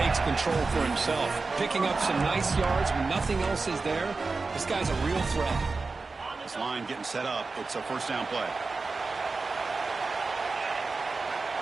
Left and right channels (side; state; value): left; quieter; 4.0 dB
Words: control for himself. Picking up some nice yards when nothing else is there. This guy's a real threat. This line getting set up. It's a first down play.